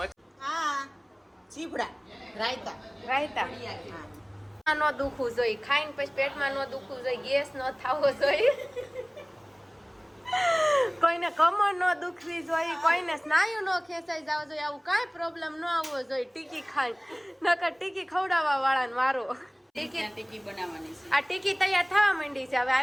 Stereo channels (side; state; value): both; identical; correlation 1.00